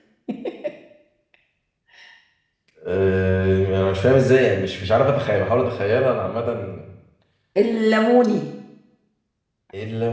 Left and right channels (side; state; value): both; identical; correlation 1.00